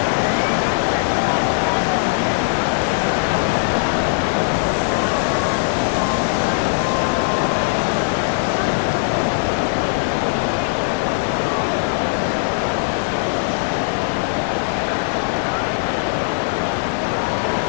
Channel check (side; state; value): right; silent; digital silence